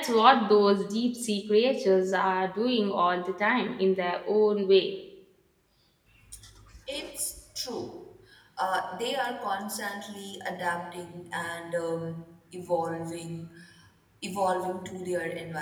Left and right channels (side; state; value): both; identical; correlation 1.00